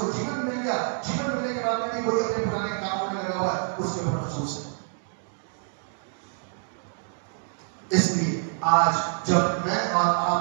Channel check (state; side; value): silent; left; 60 dB below the other